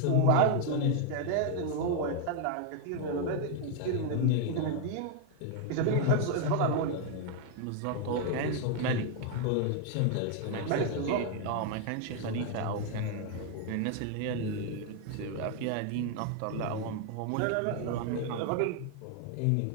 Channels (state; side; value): different; both; correlation 0.01